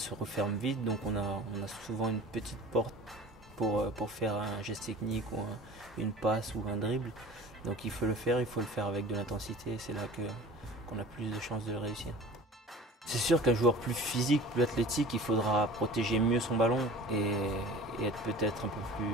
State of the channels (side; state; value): both; normal; correlation 0.41